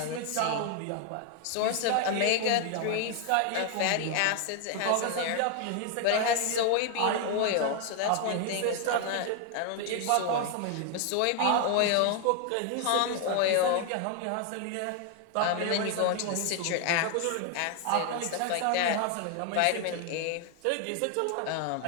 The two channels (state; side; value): different; both; correlation 0.00